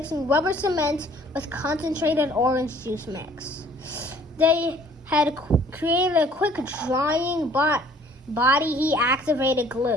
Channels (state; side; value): normal; both; correlation 0.56